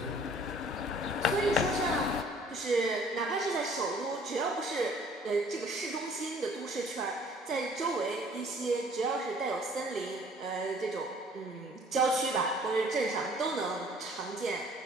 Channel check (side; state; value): both; normal; correlation 0.55